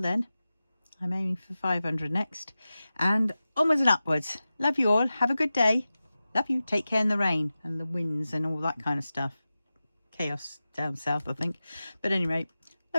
then, I'm aiming for 500 next, and onwards and upwards. Love you all. Have a good day. Love you. Take care in the rain and the winds and all that kind of stuff. Chaos down south, I think. But anyway,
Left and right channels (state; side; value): inverted; both; correlation -0.95